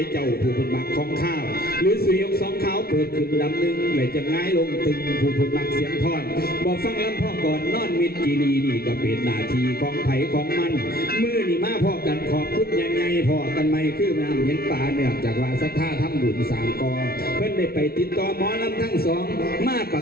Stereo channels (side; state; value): right; late; 0.44 ms